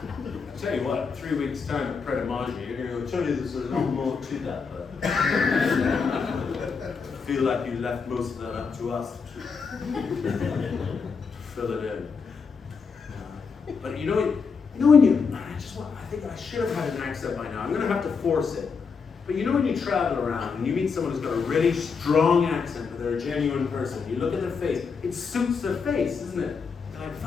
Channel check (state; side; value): quieter; right; 5.4 dB